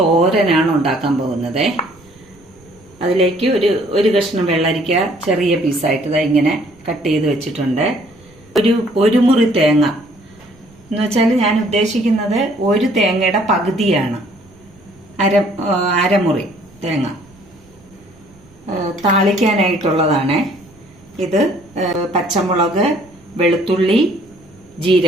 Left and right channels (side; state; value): right; noise; rumble, 28 dB below the sound